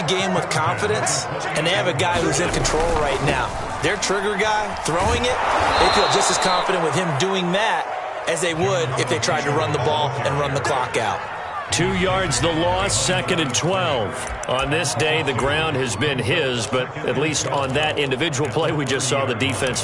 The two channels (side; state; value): both; identical; correlation 1.00